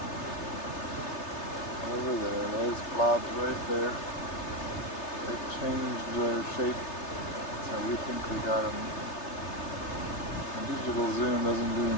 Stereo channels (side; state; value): right; late; 3.3 ms